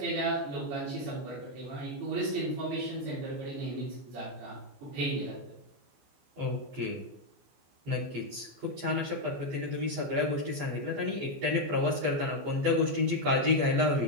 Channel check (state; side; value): late; left; 15 ms